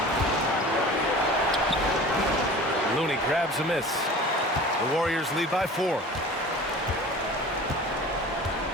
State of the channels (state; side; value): normal; both; correlation 0.40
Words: Looney grabs a miss. The Warriors lead by 4.